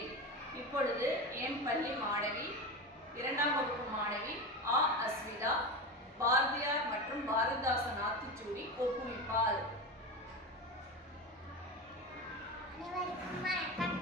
இப்பொழுது என் பள்ளி மாணவி 2ஆம் வகுப்பு மாணவி அஸ்விதா பாரதியார் மற்றும் பாரதிதாசன் ஆத்திச்சூடி ஒப்புமிப்பாள். அனைவருக்கும் வணக்கம்.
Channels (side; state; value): both; normal; correlation 0.22